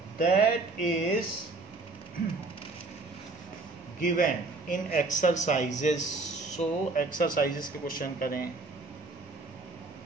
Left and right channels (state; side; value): quieter; left; 3.6 dB